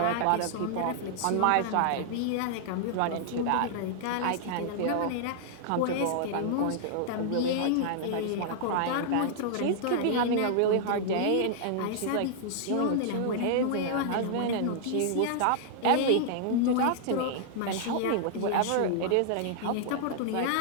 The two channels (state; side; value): different; both; correlation -0.01